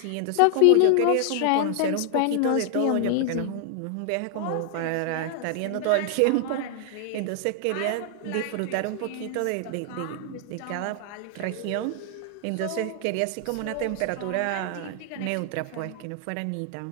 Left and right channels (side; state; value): both; different; correlation 0.00